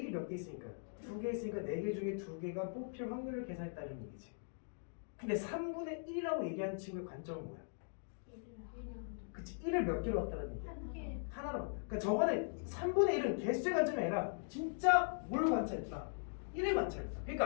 1이 몇 개 있으니까? 두 개 있으니까 네 개 중에 두 개가 뽑힐 확률을 계산했다는 얘기지. 근데 3분의 1이라고 얘기하는 친구의 관점은 뭐야? 그치, 1을 몇 개로 봤다는 얘기야? 하나로 봤다. 그러니까 저거는 3분의 1은 개수의 관점이 아니라 진짜 뭘 관찰했다? 1을 관찰했다.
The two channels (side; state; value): right; silent; digital silence